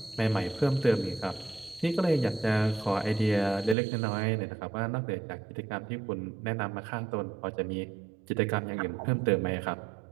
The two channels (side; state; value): left; drops out; at 3.8 s